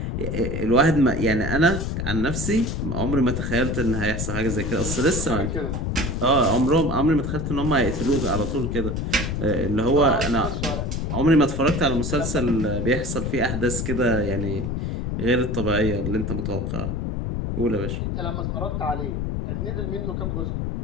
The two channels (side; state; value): left; noise; rumble, 2 dB below the sound